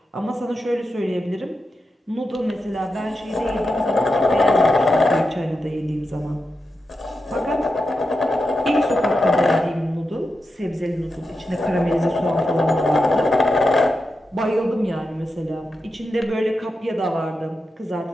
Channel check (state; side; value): normal; both; correlation 0.88